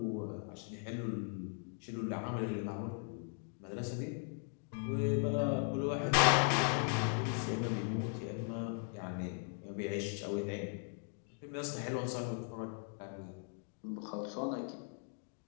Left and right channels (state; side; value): silent; right; 52 dB below the other